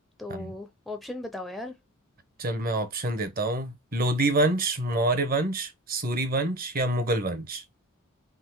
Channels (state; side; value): normal; both; correlation 0.31